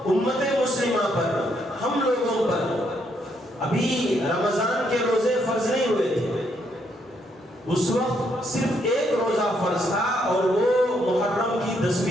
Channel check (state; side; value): normal; both; correlation 0.74